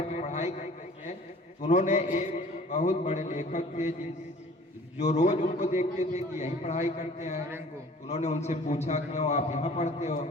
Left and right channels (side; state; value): both; normal; correlation 0.50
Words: के पढ़ाई करते थे तो उन्होंने एक बहुत बड़े लेखक थे जो रोज उनको देखते थे कि यहीं पढ़ाई करते हैं। उन्होंने उनसे पूछा क्यों आप यहाँ पढ़ते हो?